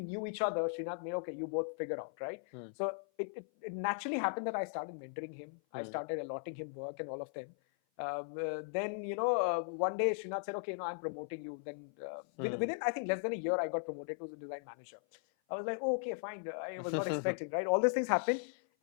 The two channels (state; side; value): silent; right; 53 dB below the other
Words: each other, Srinath made, okay, you both figure out, right? So it naturally happened that I started mentoring him. I started allotting him work and all of them. Then one day Srinath said, okay, I'm promoting you. Then within I think less than a year, I got promoted to the design manager. I was like, oh, okay, fine. I was not expecting, right? All these things happened.